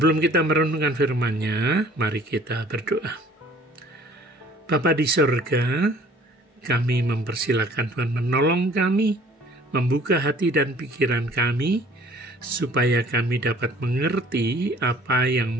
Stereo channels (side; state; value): both; normal; correlation 0.54